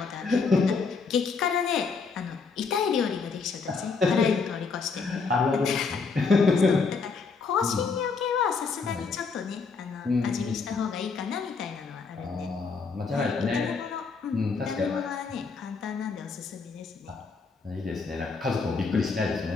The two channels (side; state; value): right; quieter; 4.8 dB